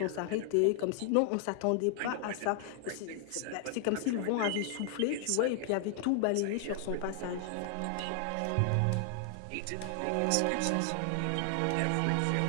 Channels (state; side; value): different; both; correlation 0.00